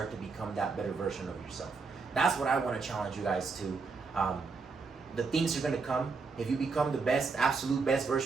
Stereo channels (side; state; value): left; quieter; 4.6 dB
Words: to become that better version of yourself. That's what I want to challenge you guys to. The things are going to come. If you become the best, absolute best